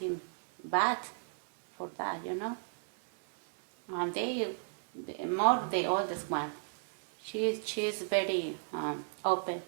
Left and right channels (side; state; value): left; silent; digital silence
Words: bad for that, And the oldest one, she's very open